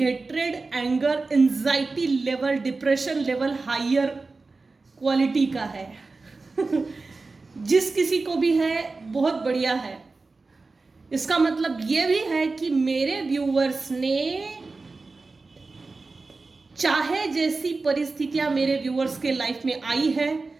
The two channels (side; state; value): left; quieter; 3.8 dB